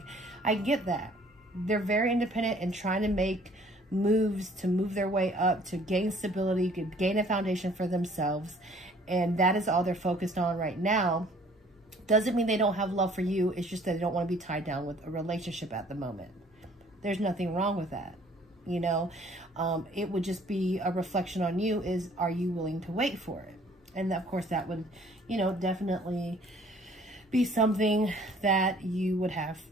I get that. They're very independent and trying to make moves to move their way up, to gain stability, to gain a foundation for themselves. And that is all they're focused on right now. Doesn't mean they don't have love for you. It's just that they don't want to be tied down with a relationship at the moment. There's nothing wrong with that. You know, it would just be a reflection on you is, are you willing to wait for it? And of course that would, you know, definitely be something that you would have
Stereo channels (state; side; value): normal; both; correlation 0.56